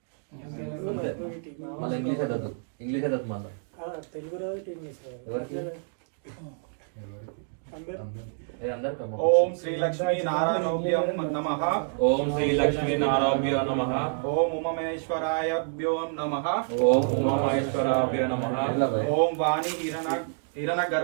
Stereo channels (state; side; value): silent; left; digital silence